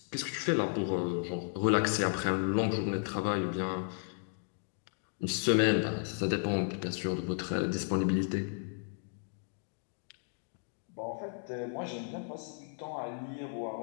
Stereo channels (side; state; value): right; silent; 55 dB below the other